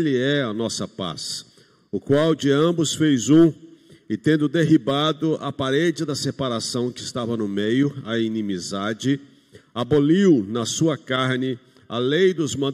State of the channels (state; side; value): identical; both; correlation 1.00